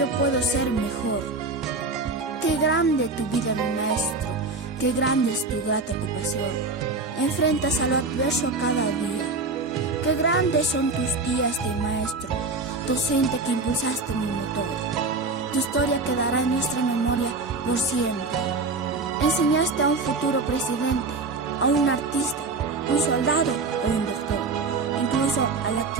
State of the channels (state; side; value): quieter; left; 3.7 dB